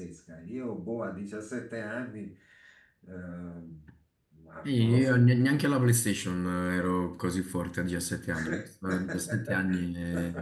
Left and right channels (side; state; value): both; identical; correlation 1.00